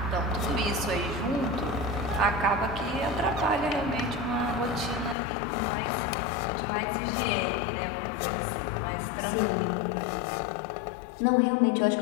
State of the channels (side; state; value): right; drops out; at 5.2 s